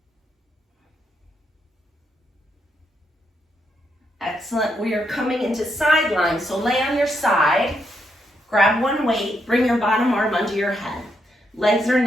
Excellent. We are coming into side lying. So lay on your side, grab one weight, bring your bottom arm under your head. Legs are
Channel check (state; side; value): normal; both; correlation 0.79